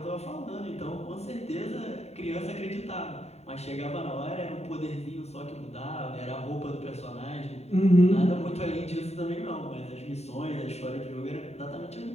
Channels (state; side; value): late; right; 0.31 ms